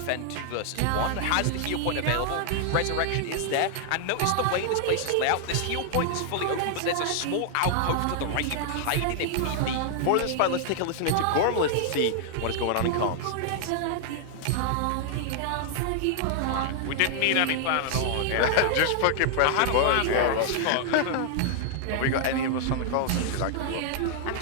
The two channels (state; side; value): different; both; correlation 0.00